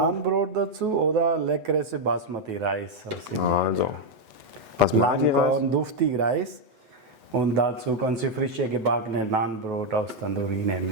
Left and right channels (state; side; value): late; left; 8.0 ms